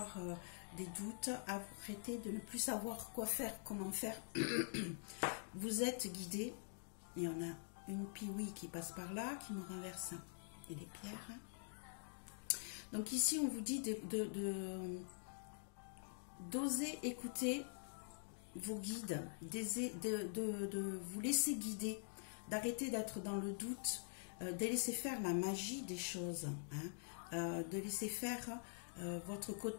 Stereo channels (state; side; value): silent; right; digital silence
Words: des doutes, arrêtez de ne plus savoir quoi faire, comment faire. Vous êtes guidé. Il y en a une piouille qui passe par là, qui me renverse et les pierres. Donc ici, on vous dit d'oser écouter vos guides, de vous laisser guider, d'arrêter d'être dans le doute, de laisser faire la magie des choses, hein, de laisser faire votre